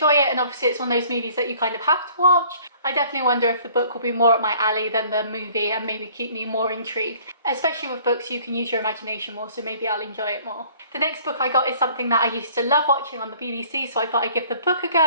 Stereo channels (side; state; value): both; inverted; correlation -0.55